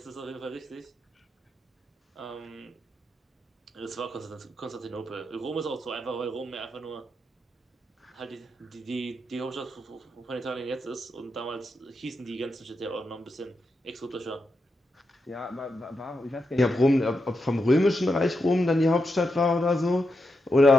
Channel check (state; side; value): normal; both; correlation 0.86